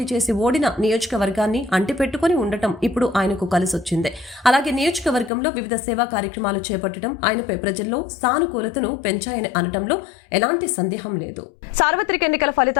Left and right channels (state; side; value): drops out; right; at 5.3 s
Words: చేసి ఓడిన నియోజకవర్గాన్ని అంటిపెట్టుకుని ఉండటం ఇప్పుడు ఆయనకు కలిసొచ్చింది. అలాగే నియోజకవర్గంలో వివిధ సేవా కార్యక్రమాలు చేపట్టడం ఆయనపై ప్రజల్లో సానుకూలతను పెంచాయని అనటంలో ఎలాంటి సందేహం లేదు. సార్వత్రిక ఎన్నికల